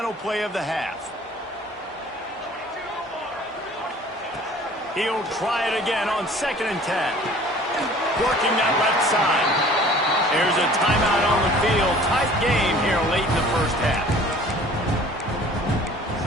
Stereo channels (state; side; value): normal; both; correlation 0.49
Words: play of the half. He'll try it again on 2nd and 10. Working that left side. There's a timeout on the field. Tight game here late in the first half.